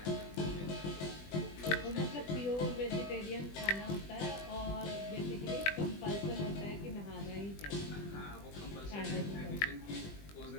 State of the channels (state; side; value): late; right; 20 ms